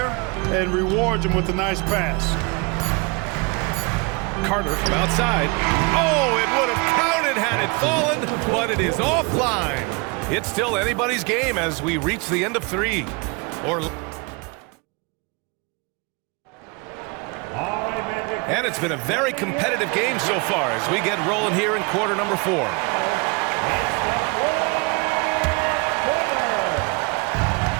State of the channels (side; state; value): left; quieter; 29.7 dB